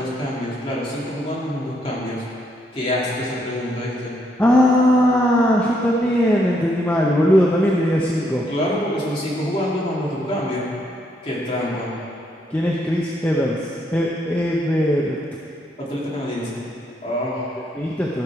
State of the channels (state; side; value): normal; both; correlation 0.74